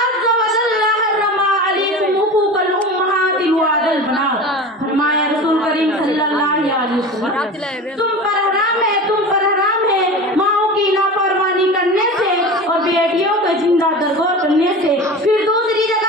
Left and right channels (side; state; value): both; normal; correlation 0.32